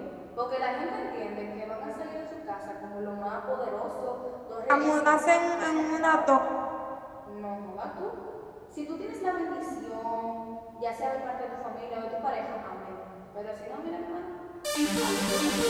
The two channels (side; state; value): both; identical; correlation 1.00